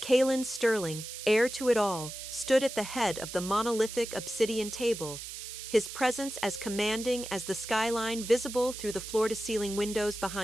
Calum Sterling, heir to it all, stood at the head of the monolithic obsidian table, his presence as commanding as the skyline visible through the floor-to-ceiling windows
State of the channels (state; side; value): noise; right; hiss, 10 dB below the sound